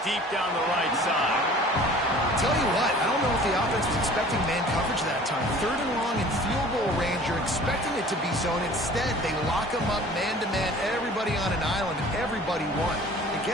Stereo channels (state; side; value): normal; both; correlation 0.47